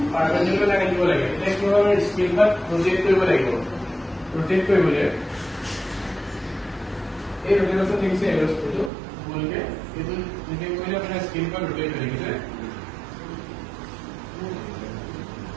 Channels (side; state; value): left; drops out; at 8.9 s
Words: পাৰপেন্ডিকুলাৰ লাইন দিব লাগে এটা কি হবে স্কেলটা ৰোটেট কৰিব লাগিব ৰোটেট কৰিবলৈ এই ৰোটেশন দেখিছে এৰোস্পেটো বলকে এটো যদি কইলে আপোনাৰ স্কেলটা ৰোটেট হৈ গিছে